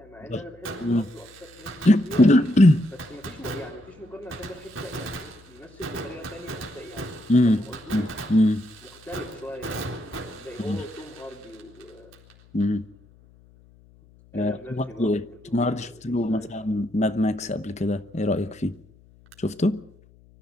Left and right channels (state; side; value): noise; left; hum, 27 dB below the sound